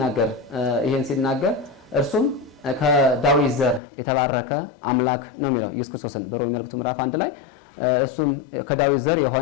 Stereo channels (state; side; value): drops out; right; at 3.8 s